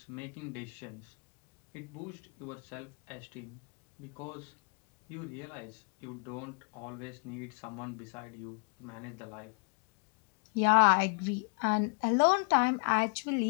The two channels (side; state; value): right; quieter; 37.0 dB